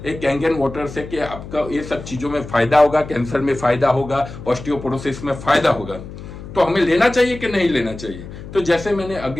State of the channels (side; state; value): left; noise; hum, 13 dB below the sound